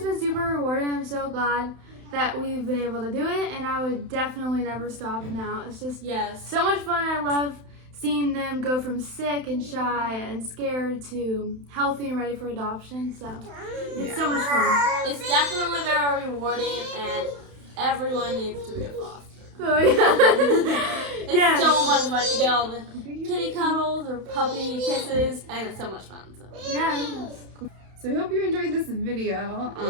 been super rewarding. I'm so glad that we've been able to do it, and I would definitely never stop now. It's just so much fun. I love seeing them go from sick and shy and scared to healthy and ready for adoption. So it's so much fun. It's definitely very rewarding, and everyone needs to be a foster. Oh yeah. It's so much fun. You get all the kitty cuddles or puppy kisses, and it's so much fun. So. Yeah. So we hope you enjoyed this video.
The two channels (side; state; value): left; late; 31 ms